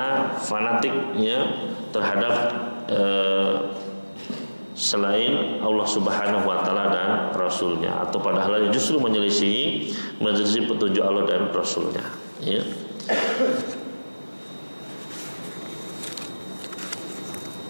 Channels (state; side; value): inverted; both; correlation -1.00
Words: fanatik, ya, terhadap selain Allah Subhanahu wa taala dan Rasulnya, atau pada hal yang justru menyelisihi petunjuk Allah dan Rasulnya, ya.